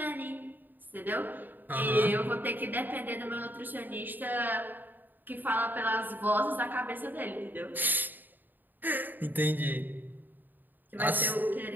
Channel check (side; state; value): left; late; 0.089 ms